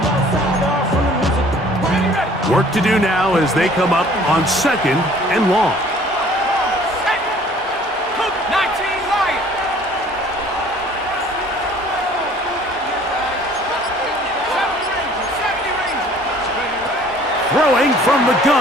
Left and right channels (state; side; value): normal; both; correlation 0.53